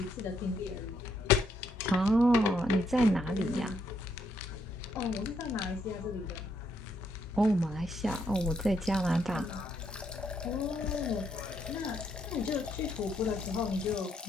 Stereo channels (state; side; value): normal; both; correlation 0.74